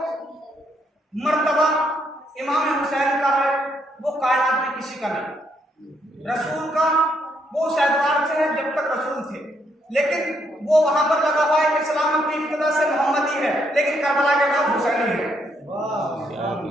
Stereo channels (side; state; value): both; normal; correlation 0.74